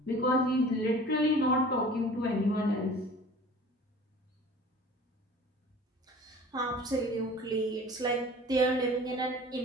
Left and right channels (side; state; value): both; normal; correlation 0.44